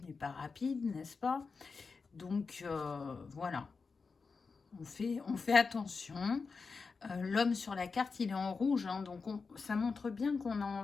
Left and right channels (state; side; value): quieter; right; 4.7 dB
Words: n'est pas rapide, n'est-ce pas? Donc, voilà. On fait attention. L'homme sur la carte, il est en rouge. Donc, ça montre bien qu'on a